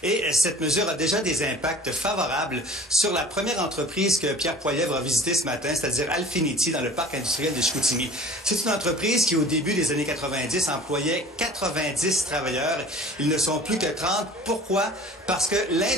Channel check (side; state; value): both; normal; correlation 0.44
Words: Et cette mesure a déjà des impacts favorables sur la première entreprise que Pierre Poilievre a visitée ce matin, c'est-à-dire Alfinity, dans le parc industriel de Chicoutimi. C'est une entreprise qui, au début des années 90, employait 90 travailleurs. Ils ne sont plus que 30. Pourquoi? Parce que